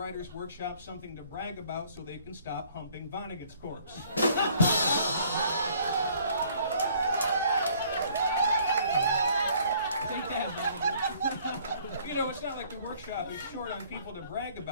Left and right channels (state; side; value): inverted; both; correlation -0.59